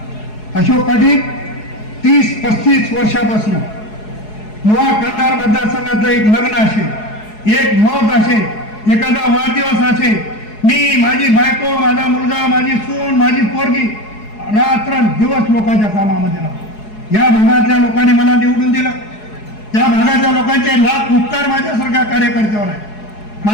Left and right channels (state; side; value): late; right; 4.7 ms